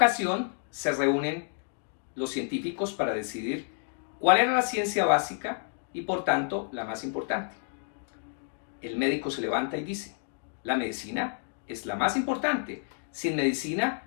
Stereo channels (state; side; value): silent; right; 58 dB below the other